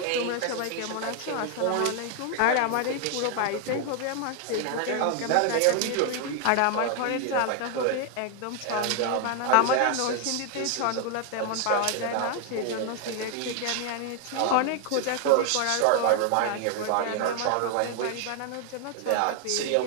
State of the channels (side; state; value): both; different; correlation 0.00